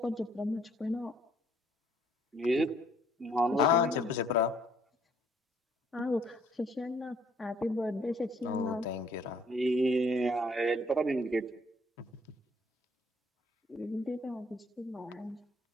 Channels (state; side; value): normal; both; correlation 0.63